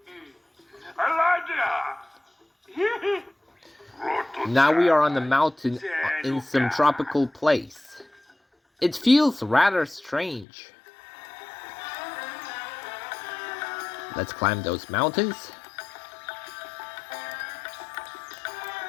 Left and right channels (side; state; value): right; drops out; at 10.5 s